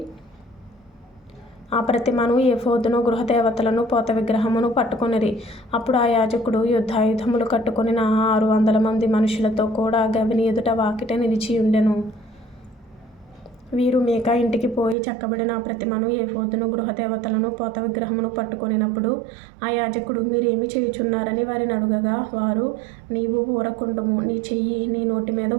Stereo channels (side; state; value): left; drops out; at 15.0 s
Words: ఆ ప్రతిమను, ఏఫోదును, గృహదేవతలను, పోత విగ్రహమును పట్టుకొనిరి. అప్పుడు ఆ యాజకుడు యుద్ధాయుధములు కట్టుకొనిన 600 మంది మనుషులతో కూడా గవిని ఎదుట వాకిట నిలిచి ఉండెను. వీరు మీకా ఇంటికి పోయి చెక్కబడిన ఆ ప్రతిమను, ఏఫోదును, గృహదేవతలను, పోత విగ్రహమును పట్టుకొనినప్పుడు ఆ యాజకుడు, మీరేమి చేయుచున్నారని వారిని అడుగగా, వారు, నీవు ఊరకుండుము, నీ చెయ్యి నీ నోటి మీద